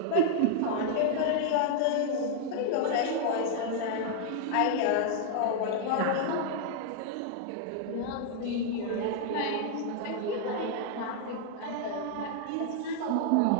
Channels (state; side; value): different; both; correlation 0.00